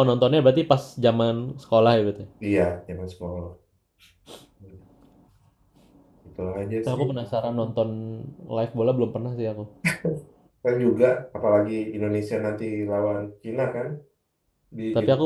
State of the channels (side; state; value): both; identical; correlation 1.00